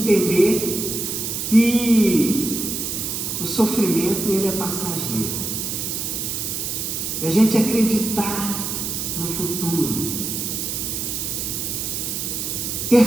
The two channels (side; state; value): right; noise; hiss, 3 dB below the sound